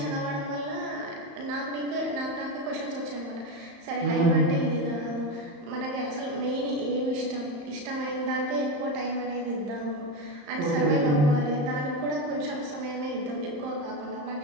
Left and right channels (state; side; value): late; left; 35 ms